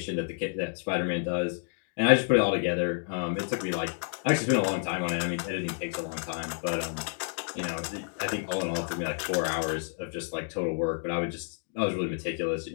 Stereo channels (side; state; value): right; silent; 58 dB below the other